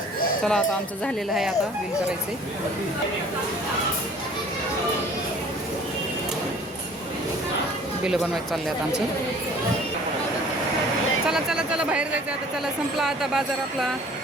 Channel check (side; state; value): both; normal; correlation 0.50